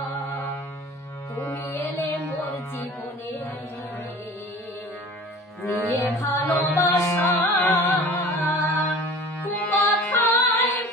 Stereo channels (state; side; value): normal; both; correlation 0.42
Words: তুমি এলে মোর জীবনে নিয়ে ভালোবাসা কথায়